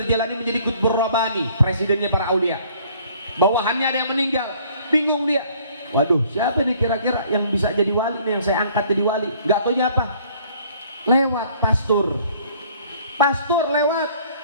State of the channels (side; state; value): both; inverted; correlation -0.58